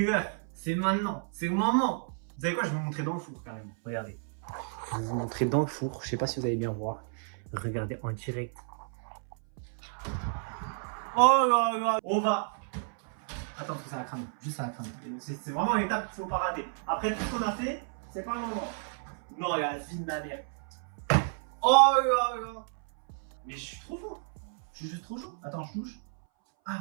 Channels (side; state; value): left; silent; 57 dB below the other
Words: C'est maintenant. C'est le moment. Vous savez quoi? Je vais vous montrer dans le four, carrément. Regardez. Je vais vous montrer dans le four. Je sais pas si vous allez bien voir. Regardez en direct. Oh là là. On va. Attends, parce que ça va cramer. Juste ça va cramer. C'est vraiment l'étape qu'il faut pas rater. Après tout ce qu'on a fait, c'est pas le moment. Non, il y a la vie de ma mère. Oh là là. Mais je suis trop fort. Je suis juste trop chaud. Attends, je touche.